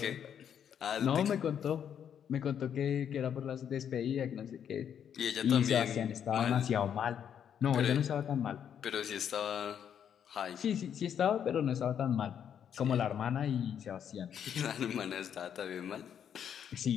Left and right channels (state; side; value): quieter; right; 8.7 dB